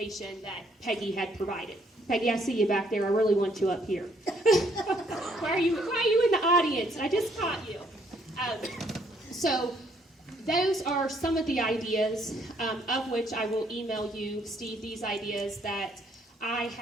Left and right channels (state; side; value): normal; both; correlation 0.68